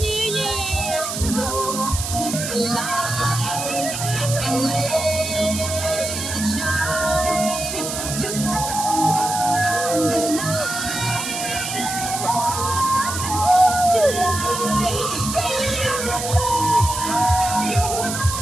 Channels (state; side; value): noise; right; hiss, 5 dB below the sound